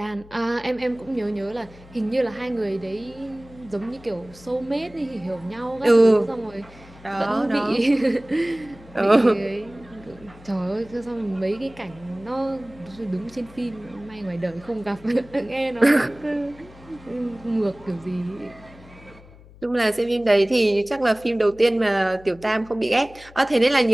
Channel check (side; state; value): left; noise; hum, 22 dB below the sound